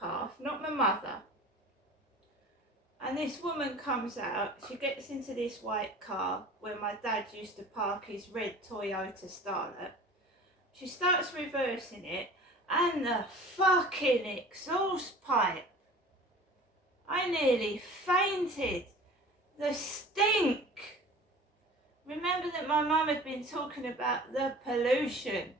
not my mother. And this woman comes out, she gets into this white car where my dad used to park his red Toyota Starlet. She starts reversing it, and the fucking exhaust pipe. I nearly fainted. The stink. Remember that my mum had been talking about the pollution.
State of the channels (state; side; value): normal; both; correlation 0.42